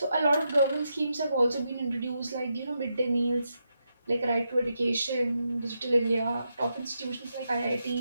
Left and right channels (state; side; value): inverted; both; correlation -0.84